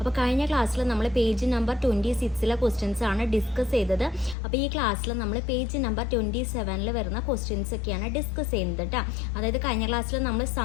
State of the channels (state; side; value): drops out; right; at 4.4 s